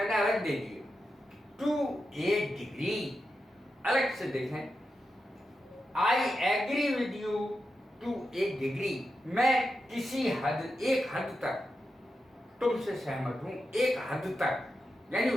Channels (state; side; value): normal; both; correlation 0.89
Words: अलग दे दी है। टू ए डिग्री, अलग से देखें। I agree with you to a degree, मैं किसी हद, एक हद तक तुमसे सहमत हूं, एक हद तक, यानी